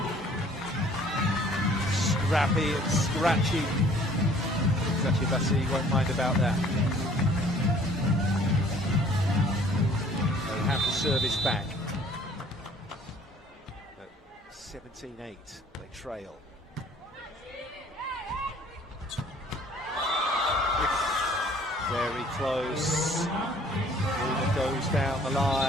Scrappy and scratchy. Eczacibasi won't mind about that. They have the service back. 17-8, they trail. Very close. Luna goes down the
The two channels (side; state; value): both; normal; correlation 0.55